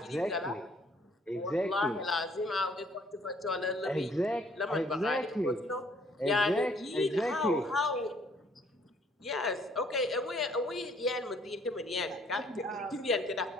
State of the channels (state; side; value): normal; both; correlation 0.62